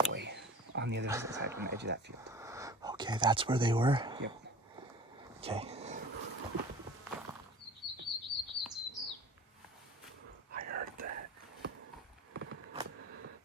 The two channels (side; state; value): both; normal; correlation 0.42